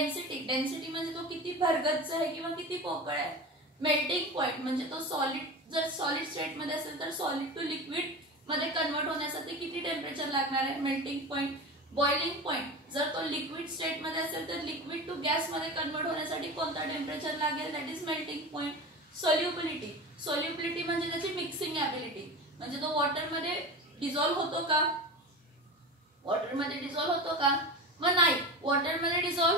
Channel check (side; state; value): both; normal; correlation 0.29